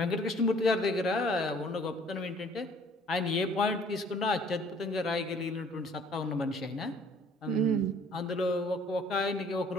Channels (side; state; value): both; normal; correlation 0.57